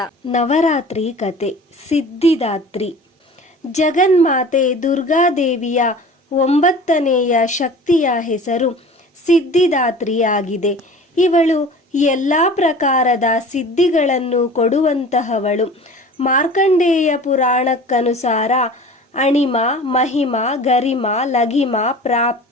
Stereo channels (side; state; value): both; normal; correlation 0.41